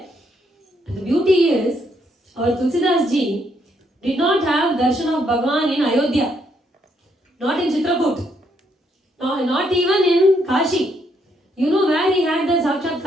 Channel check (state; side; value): normal; both; correlation 0.74